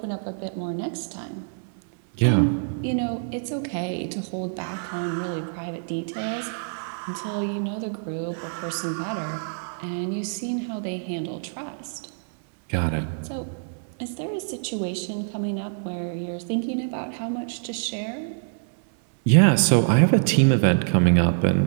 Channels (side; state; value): left; silent; 61 dB below the other